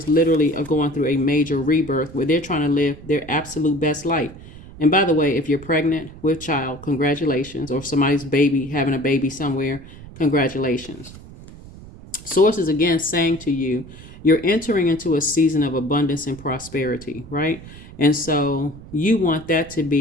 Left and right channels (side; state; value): right; noise; rumble, 17 dB below the sound